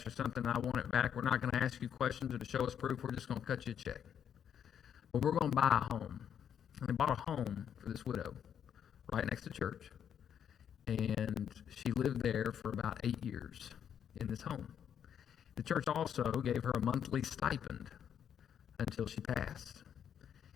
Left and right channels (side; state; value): right; quieter; 8.7 dB